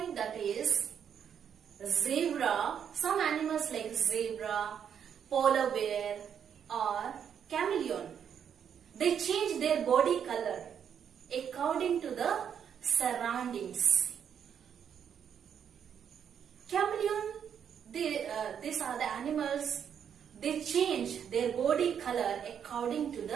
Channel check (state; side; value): quieter; left; 8.2 dB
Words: that is zebra. Some animals like zebra, polar bear, or chameleon. They change their body color according to the surroundings. Chameleon, these are the animals. They change their body color according to